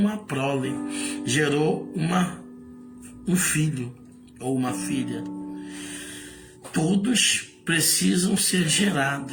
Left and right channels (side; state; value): both; identical; correlation 1.00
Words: prole, gerou um filho ou uma filha. Todos precisam ser